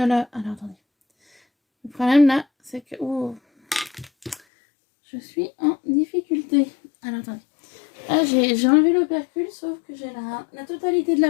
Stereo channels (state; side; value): drops out; right; at 4.4 s